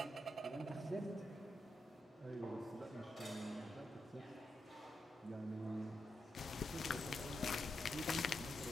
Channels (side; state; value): both; normal; correlation 0.85